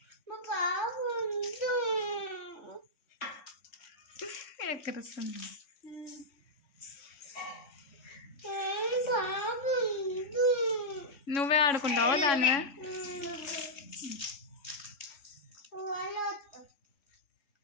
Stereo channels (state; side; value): late; right; 3.6 ms